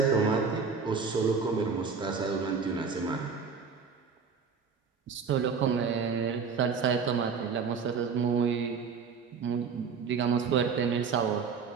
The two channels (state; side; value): quieter; left; 5.7 dB